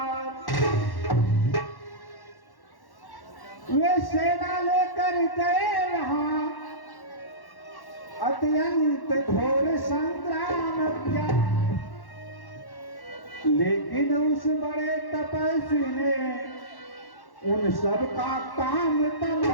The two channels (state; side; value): late; right; 1.1 ms